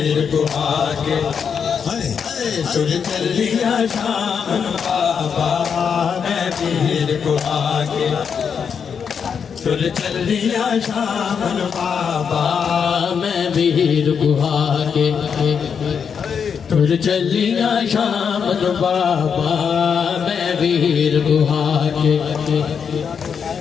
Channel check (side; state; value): right; quieter; 6.8 dB